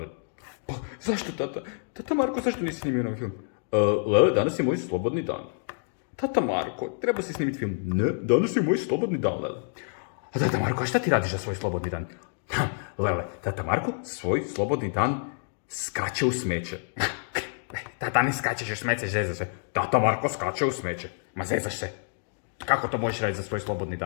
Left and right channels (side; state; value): right; silent; digital silence